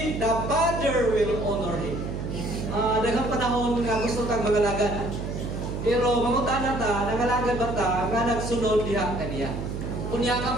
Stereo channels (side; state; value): right; noise; hum, 5 dB below the sound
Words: the Father will honor him. Daghang panahon nga gusto tang mangalagad. Pero mangutana ta, nangalagad ba ta nga nagsunod diha kaniya. Kunya